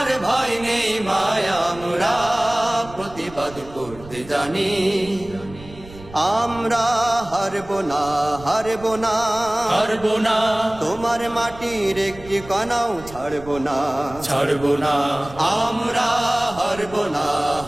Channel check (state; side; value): noise; right; rumble, 18 dB below the sound